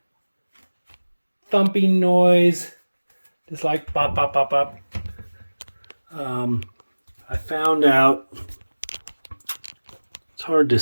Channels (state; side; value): inverted; both; correlation -1.00